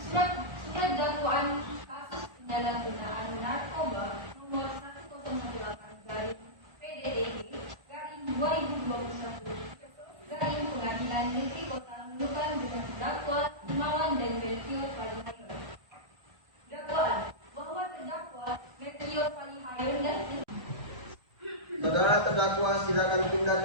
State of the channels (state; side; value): late; left; 1.3 ms